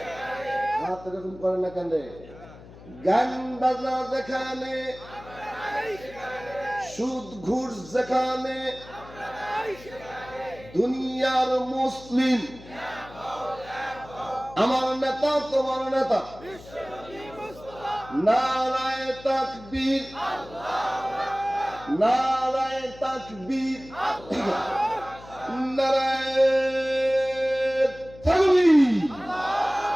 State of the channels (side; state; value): left; noise; hum, 19 dB below the sound